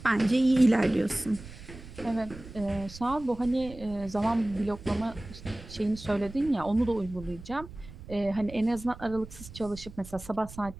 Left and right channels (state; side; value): noise; right; rumble, 16 dB below the sound